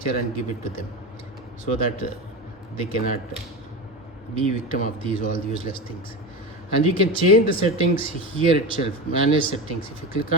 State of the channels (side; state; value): both; normal; correlation 0.23